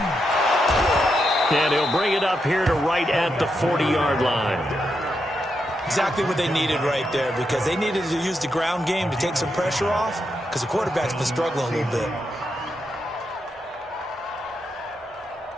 And he'll bring it up here to right at the 40-yard line. Exactly what they needed right there, because they needed to use the ground game to take some pressure off, because the quarterback's been struggling a little bit.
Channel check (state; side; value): normal; both; correlation 0.83